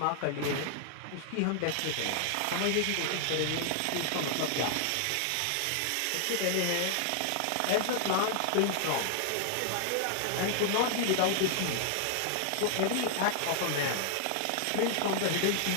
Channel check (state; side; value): different; both; correlation 0.00